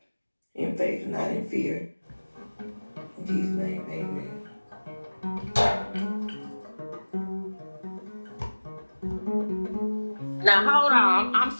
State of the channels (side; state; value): both; inverted; correlation -1.00